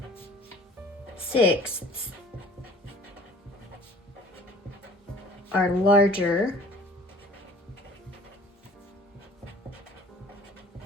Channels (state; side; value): normal; both; correlation 0.49